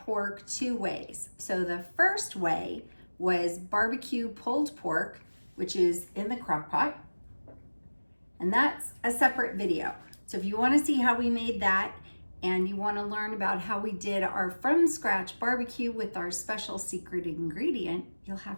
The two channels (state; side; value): inverted; both; correlation -1.00